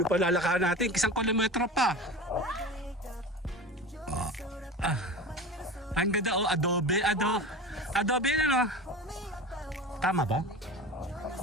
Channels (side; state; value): both; normal; correlation 0.31